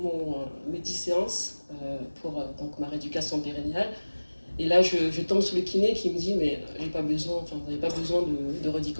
mes 10 séances pour donc, ma rééducation périnéale. Et là, je tombe sur le kiné qui me dit, mais vous n'avez pas besoin de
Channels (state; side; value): inverted; both; correlation -1.00